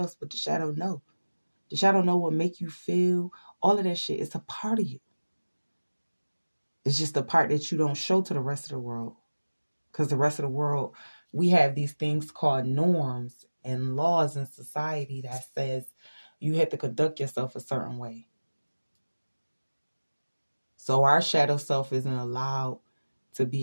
but the shadow know. The shadow know what make you feel. All of that shit. It's a part of you. It's just the part that you don't show to the rest of the world. Because the rest of the world, we have these things called norms and laws in society that says you have to conduct yourself a certain way. So our shadow self isn't allowed to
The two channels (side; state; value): both; inverted; correlation -1.00